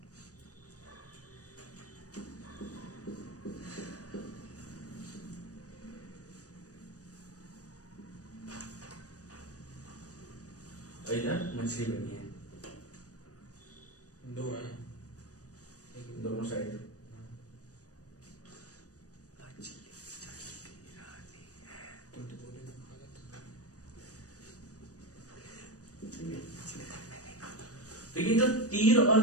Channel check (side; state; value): right; late; 0.67 ms